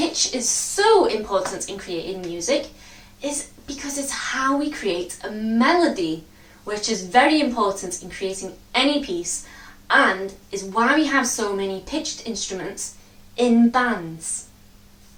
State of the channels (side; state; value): both; identical; correlation 1.00